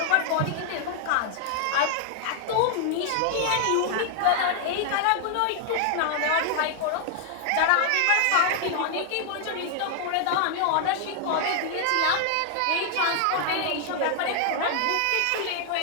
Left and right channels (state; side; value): different; both; correlation 0.00